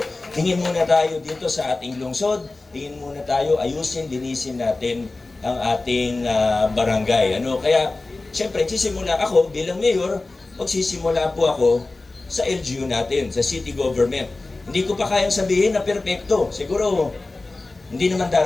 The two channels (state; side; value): quieter; right; 3.3 dB